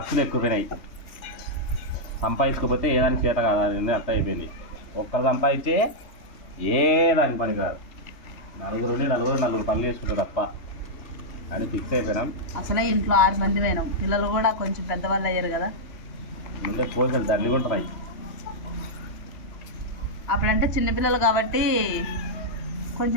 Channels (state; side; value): late; right; 3.3 ms